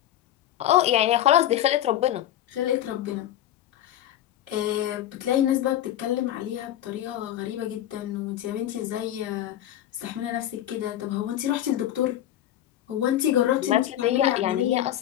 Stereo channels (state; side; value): quieter; right; 12.2 dB